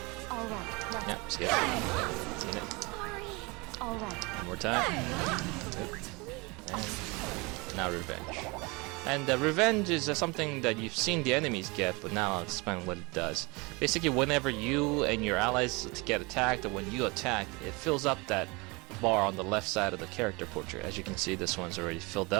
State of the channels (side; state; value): left; quieter; 26.7 dB